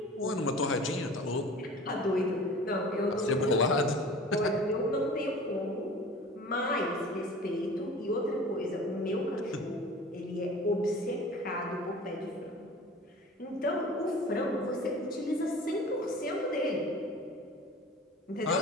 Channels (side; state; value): both; normal; correlation 0.41